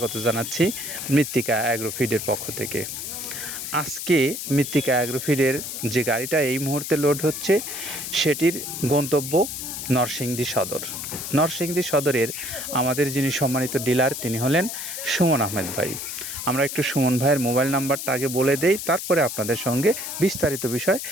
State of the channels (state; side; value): noise; left; hiss, 6 dB below the sound